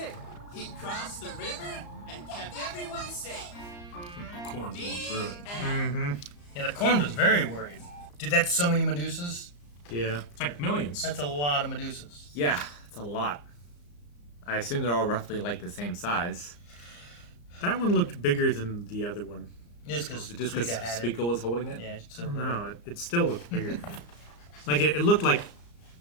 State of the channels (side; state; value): right; late; 34 ms